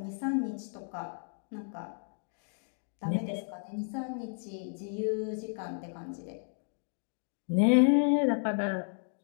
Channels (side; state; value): right; silent; 56 dB below the other